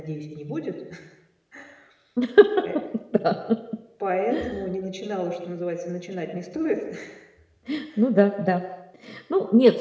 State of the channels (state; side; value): identical; both; correlation 1.00